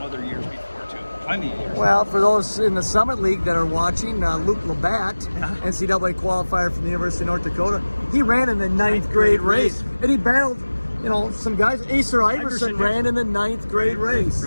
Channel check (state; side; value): inverted; both; correlation -1.00